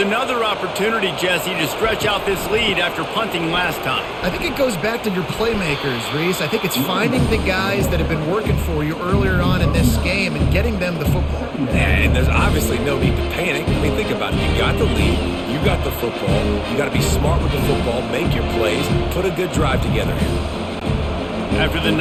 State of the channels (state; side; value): identical; both; correlation 1.00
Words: opportunity, Jesse, to stretch out this lead after punting last time. I think it goes back to your playmakers, Reese. I think it's finding the guys that have been working for you earlier on in this game and getting them the football. And there's obviously no need to panic. I mean, think about it. You got the lead. You got the football. You got to be smart with the football, make your plays, put a good drive together here. After the